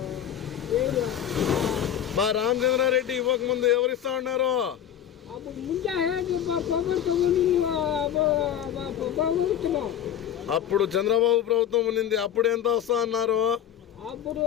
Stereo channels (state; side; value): quieter; right; 10.2 dB